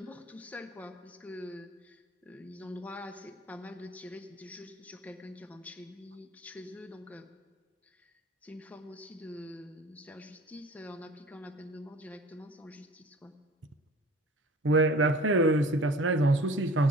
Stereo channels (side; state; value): both; normal; correlation 0.44